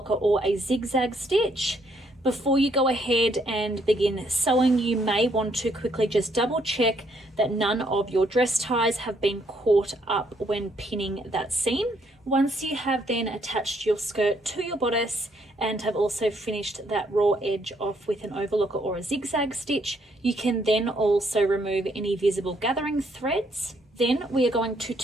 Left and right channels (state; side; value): normal; both; correlation 0.71